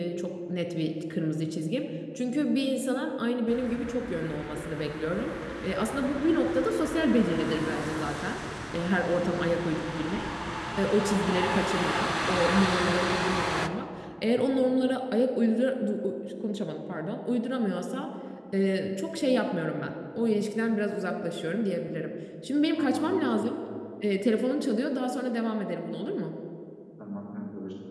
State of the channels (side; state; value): both; identical; correlation 1.00